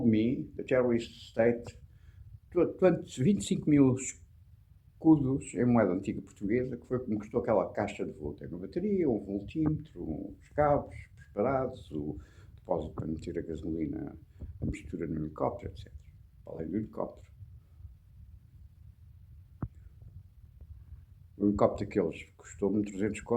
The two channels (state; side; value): identical; both; correlation 1.00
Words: me, the terrorist state, 25 mil escudos em moeda antiga portuguesa, que foi o que me custou aquela caixa de voo. Tem uma bateria, um voltímetro, uns cabos preparados, o depósito para meter a gasolina, a mistura no helicóptero, etc. Além do helicóptero. O helicóptero daqueles custou-me 300